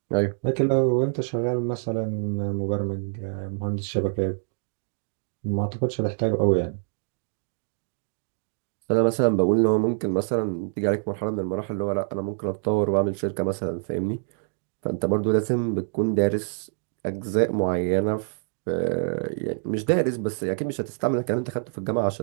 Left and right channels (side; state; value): left; silent; digital silence